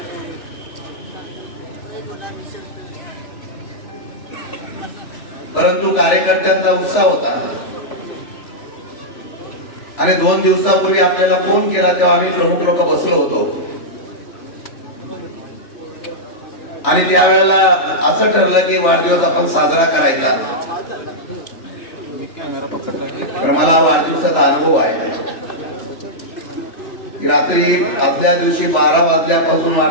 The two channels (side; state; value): right; late; 3.4 ms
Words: परंतु कार्यकर्त्यांचा उत्साह होता आणि 2 दिवसापूर्वी आपल्याला फोन केला तेव्हा आम्ही प्रमुख लोक बसलो होतो आणि त्यावेळेला असं ठरलं की वाढदिवस आपण साजरा करायचा. तर मला वाढदिवसाचा अनुभव आहे. रात्री आदल्या दिवशी 12 वाजल्यापासून